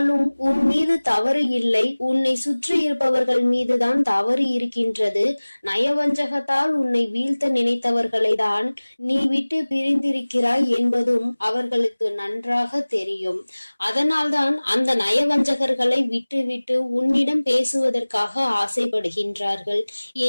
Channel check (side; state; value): both; inverted; correlation -1.00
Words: உன் மீது தவறு இல்லை, உன்னை சுற்றி இருப்பவர்கள் மீதுதான் தவறு இருக்கின்றது. நயவஞ்சகத்தால் உன்னை வீழ்த்த நினைத்தவர்களை தான் நீ விட்டு பிரிந்திருக்கிறாய் என்பதும் அவர்களுக்கு நன்றாக தெரியும். அதனால்தான் அந்த நயவஞ்சகர்களை விட்டு விட்டு உன்னிடம் பேசுவதற்காக ஆசைப்படுகின்றார்கள்.